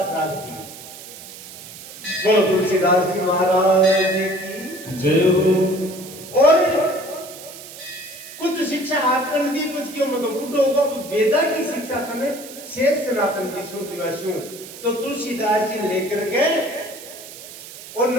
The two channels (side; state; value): right; noise; hiss, 15 dB below the sound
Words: राग दी। बोलो तुलसीदास जी महाराज की जय हो। और कुछ शिक्षा आपने दी कुछ क्यों मैं तो बूढ़ो होगा तो वेदा की शिक्षा तने शेष सनातन जी सुन दिवासु। तो तुलसीदास जी लेकर के और